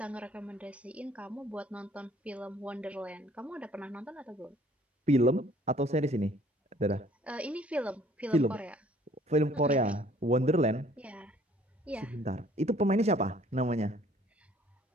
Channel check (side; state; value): both; normal; correlation 0.57